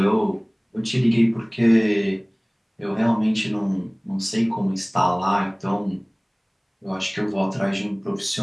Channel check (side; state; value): both; identical; correlation 1.00